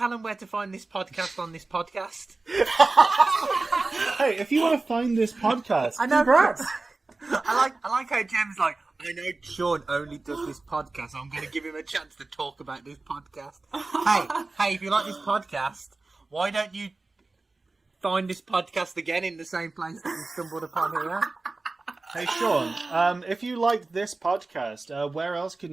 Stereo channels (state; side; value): quieter; left; 3.5 dB